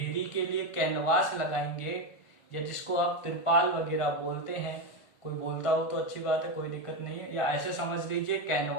के लिए कैनवास लगाएंगे, या जिसको आप तिरपाल वगैरह बोलते हैं, कोई बोलता हो तो अच्छी बात है, कोई दिक्कत नहीं है, या ऐसे समझ लीजिए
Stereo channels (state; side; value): late; right; 1.5 ms